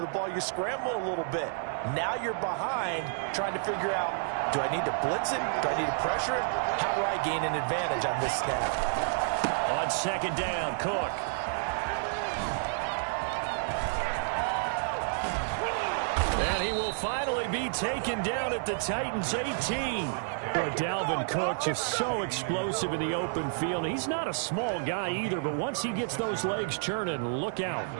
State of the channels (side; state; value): left; silent; digital silence